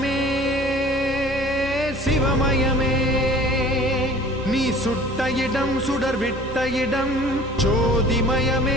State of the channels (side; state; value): both; normal; correlation 0.48